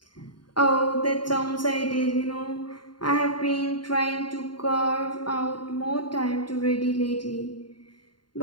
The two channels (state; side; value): late; right; 0.72 ms